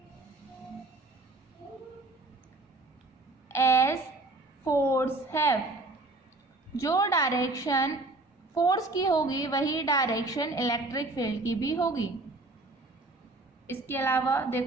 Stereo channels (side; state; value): left; quieter; 3.1 dB